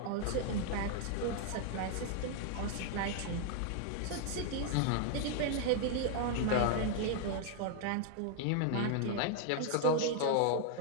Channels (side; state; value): both; different; correlation 0.00